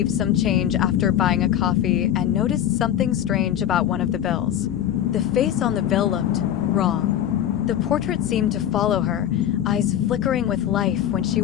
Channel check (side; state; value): right; quieter; 10.8 dB